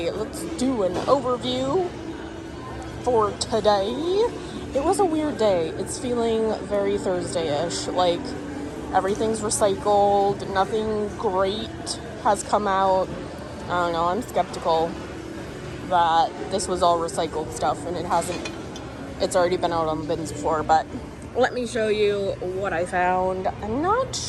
let's do an overview for today. It was a weird day. It's feeling very Thursday-ish, like everything's recycled, nothing great has come out. I don't know, I'm skeptical that this was all recycled stuff, and it's already been out on the bins before. But let me show you what I found. I'm not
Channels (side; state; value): both; identical; correlation 1.00